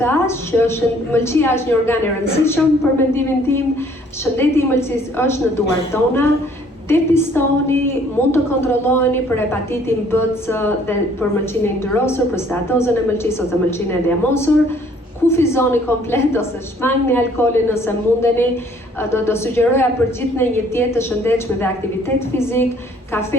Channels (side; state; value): both; normal; correlation 0.59